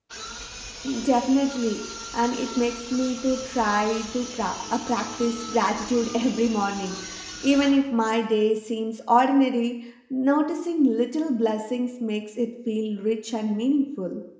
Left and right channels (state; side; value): identical; both; correlation 1.00